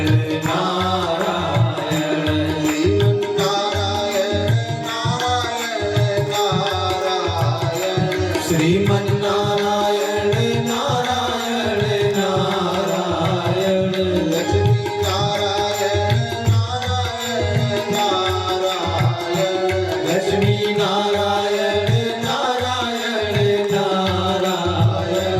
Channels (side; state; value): both; identical; correlation 1.00